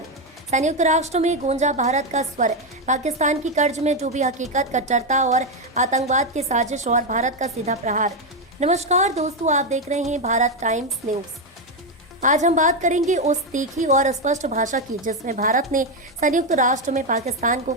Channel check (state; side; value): normal; both; correlation 0.07